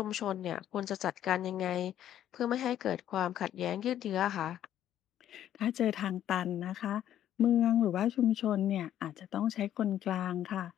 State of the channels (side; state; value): right; quieter; 11.2 dB